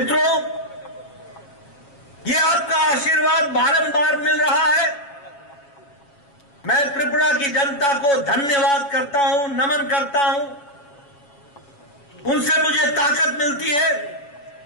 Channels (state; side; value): late; right; 7.1 ms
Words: ये आपका आशीर्वाद बारंबार मिल रहा है। मैं त्रिपुरा की जनता को धन्यवाद करता हूं, नमन करता हूं। उनसे मुझे ताकत मिलती है।